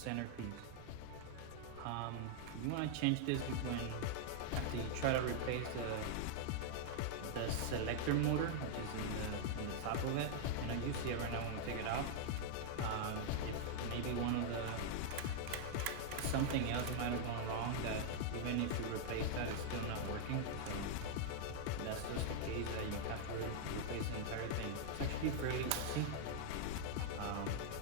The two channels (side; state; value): both; different; correlation -0.01